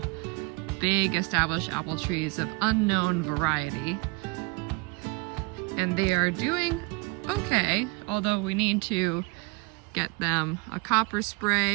big established apple trees of unknown variety, and they are doing okay, although we need to get them a copper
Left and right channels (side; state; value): left; quieter; 27.8 dB